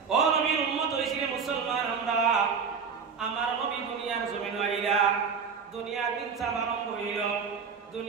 ও নবীর উম্মত হইছিলেন মুসলমান আমরা, আমার নবী দুনিয়ার জমিন আইলা, দুনিয়ার ইনসাফ আরম্ভ হইল,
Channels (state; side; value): quieter; left; 5.9 dB